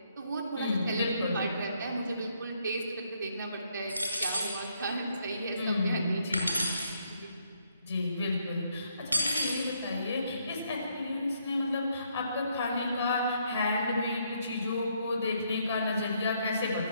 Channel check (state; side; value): inverted; both; correlation -0.73